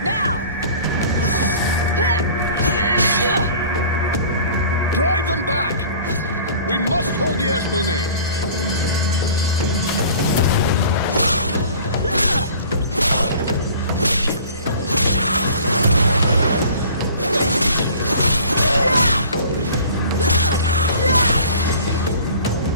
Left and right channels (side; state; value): both; inverted; correlation -0.46